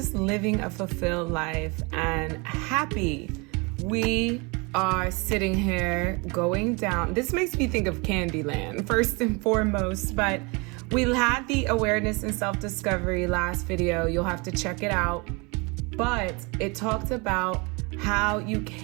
living a fulfilled life and happy. We are sitting here going down. This makes me think of Candyland first and foremost, but we had the awareness and self-discovery last video. You'll have to check it out. But it talked about how you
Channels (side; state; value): left; quieter; 28.8 dB